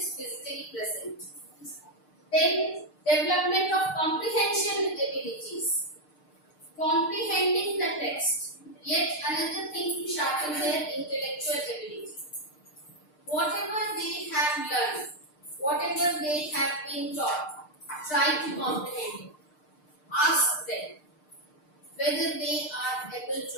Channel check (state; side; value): late; right; 6.6 ms